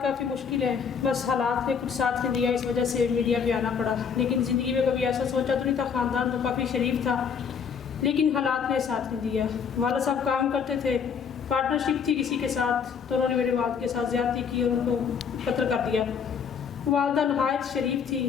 کافی مشکل ہیں، بس حالات نے کچھ ساتھ نہیں دیا، اس وجہ سے میڈیا پہ آنا پڑا۔ لیکن زندگی میں کبھی ایسا سوچا تو نہیں تھا، خاندان تو کافی شریف تھا لیکن حالات نے ساتھ نہیں دیا۔ والد صاحب کام کرتے تھے، پارٹنرشپ تھی کسی کے ساتھ، تو انہوں نے میرے والد کے ساتھ زیادتی کی اور ان کو قتل کر دیا۔ والدہ نہایت شریف تھی،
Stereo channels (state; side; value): quieter; right; 6.7 dB